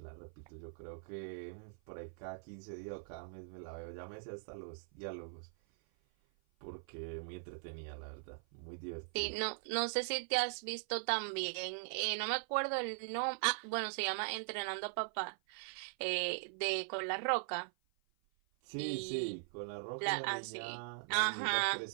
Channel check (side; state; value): left; silent; 51 dB below the other